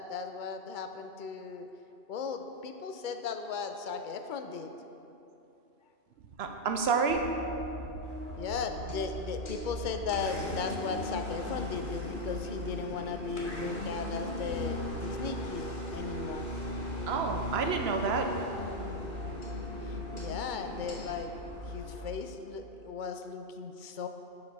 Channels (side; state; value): left; late; 3.0 ms